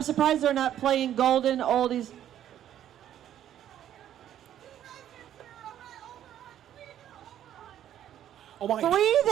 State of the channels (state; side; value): quieter; left; 11.0 dB